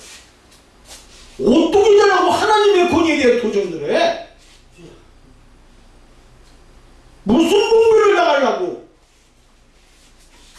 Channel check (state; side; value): identical; both; correlation 1.00